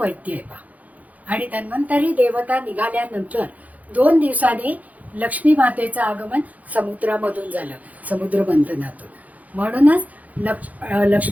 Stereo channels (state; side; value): late; left; 0.076 ms